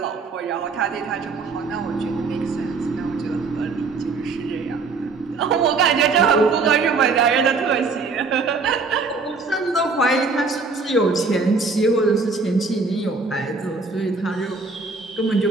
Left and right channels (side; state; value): left; quieter; 4.2 dB